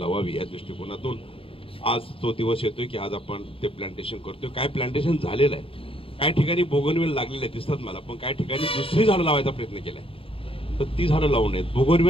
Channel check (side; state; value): right; late; 0.27 ms